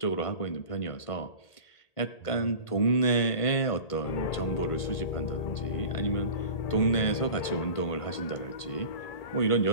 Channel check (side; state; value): right; late; 1.5 ms